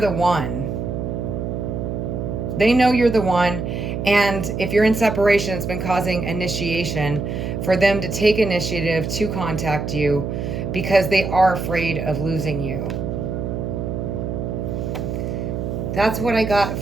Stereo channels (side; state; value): right; noise; hum, 3 dB below the sound